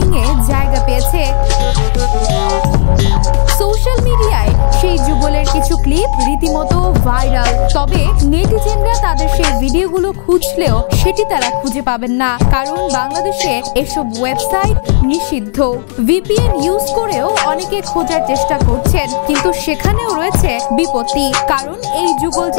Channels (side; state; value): right; silent; 65 dB below the other